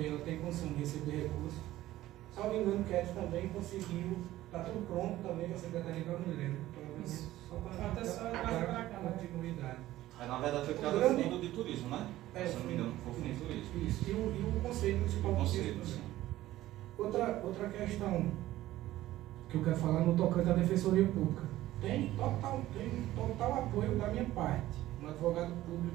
ela tem condição de receber recursos. Salvo engano, o Cat também conseguiu, está tudo pronto também com a Secretaria da Mulher. Só para a continuidade. Na verdade foi criado o Fundo de Turismo, né? Se não me engano, foi o Fundo de Turismo. Isso, e o Conselho Municipal de Turismo. Outra questão que eu quero falar no tocante à Defensoria Pública. Tem total apoio da minha parte, um advogado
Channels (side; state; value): left; quieter; 15.2 dB